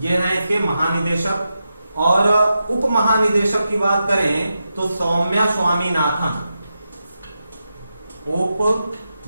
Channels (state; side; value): inverted; both; correlation -0.88